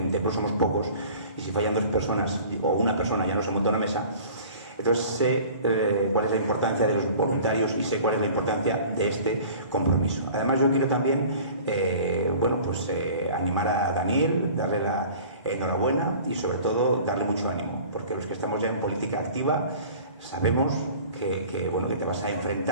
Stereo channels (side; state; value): both; inverted; correlation -0.45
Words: tiempo somos pocos, y si fallan 2 personas o una persona ya no se monta una mesa. Entonces sé cuál es la importancia de los voluntarios y sé cuál es la importancia de este compromiso. Además yo quiero también animar a Daniel, darle la enhorabuena y sobre todo darle mucho ánimo, porque los que estamos ya en política activa sabemos que te vas a